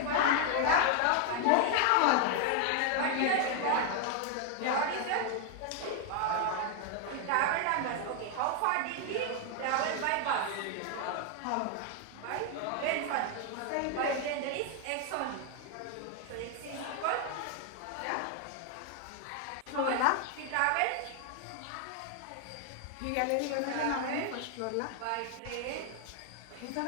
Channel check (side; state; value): both; different; correlation 0.00